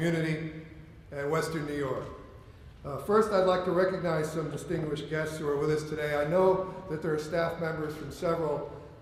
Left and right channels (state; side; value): identical; both; correlation 1.00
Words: and Western New York. First, I'd like to recognize some distinguished guests who are with us today. I know that there are staff members from several